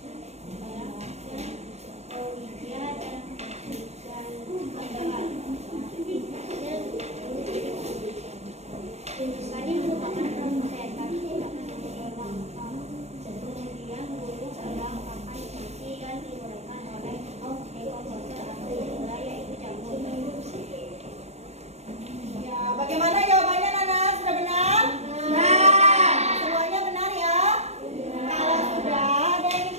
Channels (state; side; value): late; left; 0.31 ms